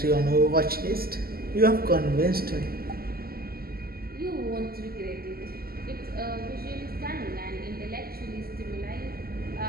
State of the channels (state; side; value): late; left; 0.44 ms